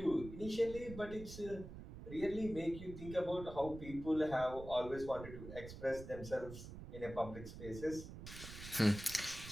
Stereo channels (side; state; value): right; noise; rumble, 11 dB below the sound